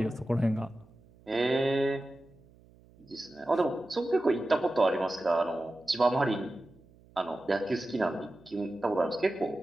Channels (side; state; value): right; noise; hum, 27 dB below the sound